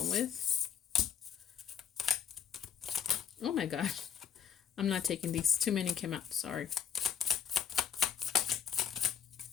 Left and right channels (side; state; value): right; quieter; 8.2 dB